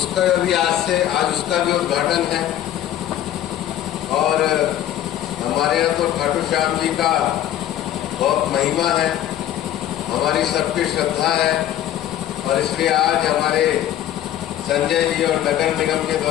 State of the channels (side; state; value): right; quieter; 12.0 dB